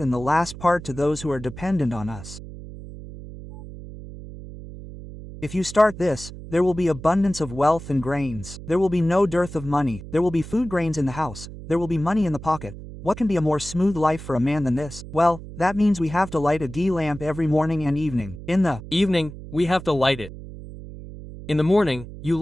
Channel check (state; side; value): noise; right; hum, 13 dB below the sound